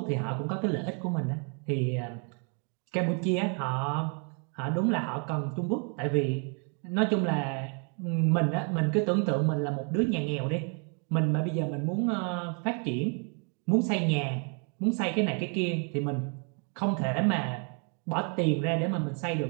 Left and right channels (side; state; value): left; quieter; 39.2 dB